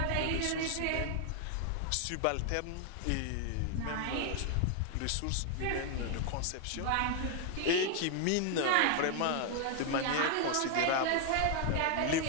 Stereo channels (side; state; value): both; different; correlation 0.00